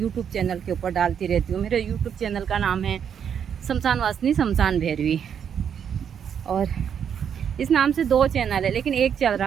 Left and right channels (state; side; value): quieter; left; 8.1 dB